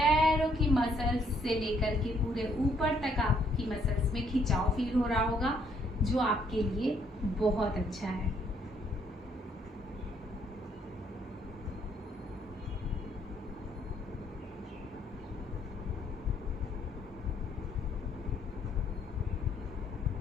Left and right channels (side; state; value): both; normal; correlation 0.68